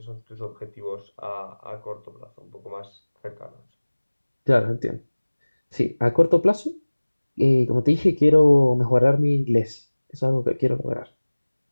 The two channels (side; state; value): both; inverted; correlation -1.00